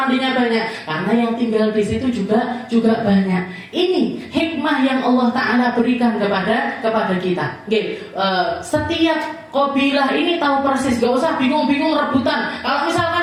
banyak? Karena yang tinggal di situ juga banyak. Ini hikmah yang Allah Ta'ala berikan kepada kita. Setiap kabilah ini tahu persis, gak usah bingung-bingung rebutan. Kalau misalkan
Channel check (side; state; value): both; identical; correlation 1.00